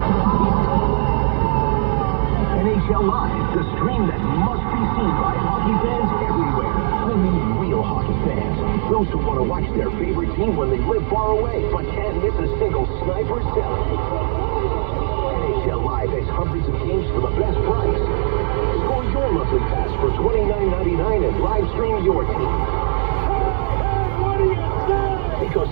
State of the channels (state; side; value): silent; left; 59 dB below the other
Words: NHL Live, the stream that must be seen by hockey fans everywhere. I mean real hockey fans. Those who want to watch their favorite team when they live far away, but can't miss a single sniper cell. NHL Live has hundreds of games for the best price. Score your monthly pass for $29.99 and live stream your team. Because